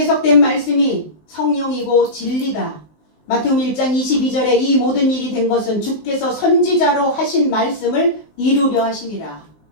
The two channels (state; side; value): late; right; 19 ms